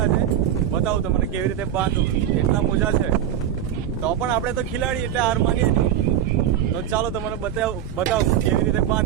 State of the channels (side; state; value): left; quieter; 10.3 dB